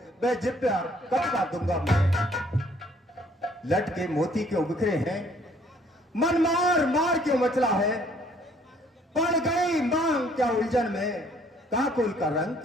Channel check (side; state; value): both; normal; correlation 0.61